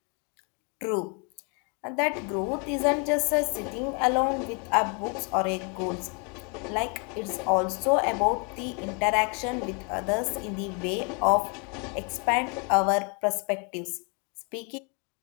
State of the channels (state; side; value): quieter; right; 36.3 dB